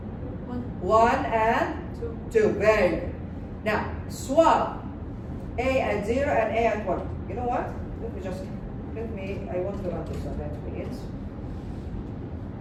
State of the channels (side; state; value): both; identical; correlation 1.00